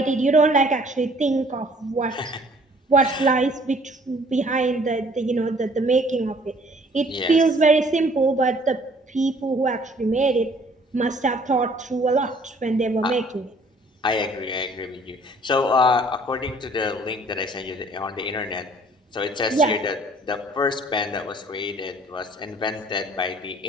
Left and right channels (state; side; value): normal; both; correlation 0.57